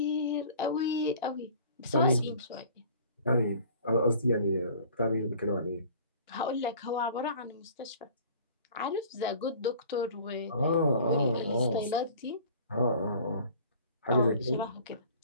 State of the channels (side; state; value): both; inverted; correlation -0.47